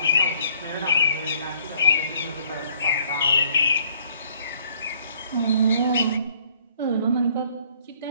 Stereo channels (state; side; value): inverted; both; correlation -0.62